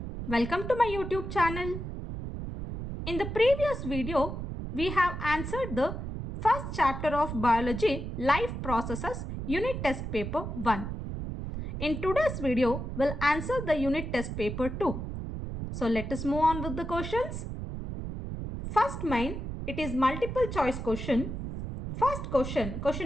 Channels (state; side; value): noise; right; rumble, 6 dB below the sound